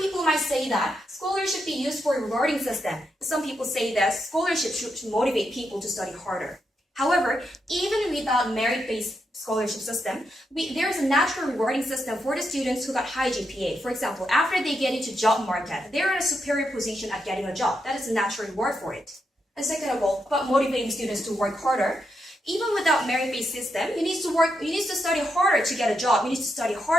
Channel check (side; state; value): both; normal; correlation 0.83